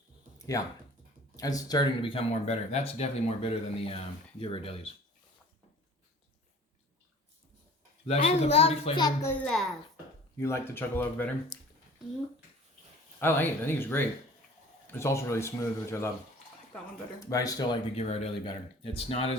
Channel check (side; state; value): both; normal; correlation 0.46